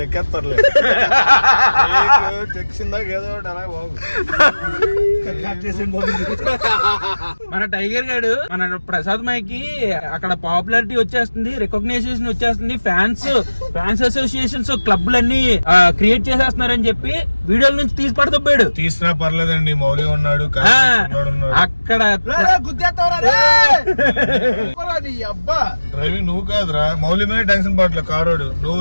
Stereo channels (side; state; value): both; inverted; correlation -1.00